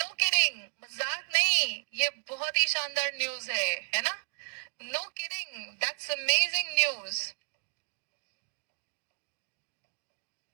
kidding, मजाक नहीं, ये बहुत ही शानदार न्यूज है ना। No kidding, that's amazing news.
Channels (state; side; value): silent; left; digital silence